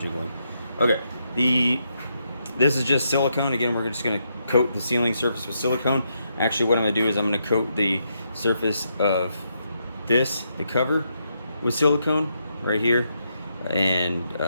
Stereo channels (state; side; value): inverted; both; correlation -0.80